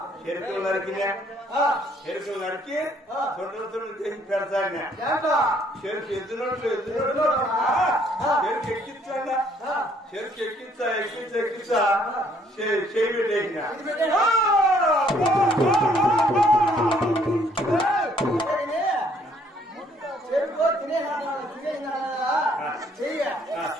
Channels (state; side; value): normal; both; correlation 0.64